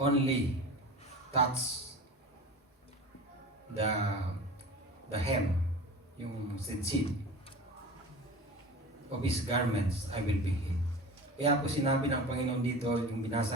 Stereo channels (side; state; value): both; normal; correlation 0.35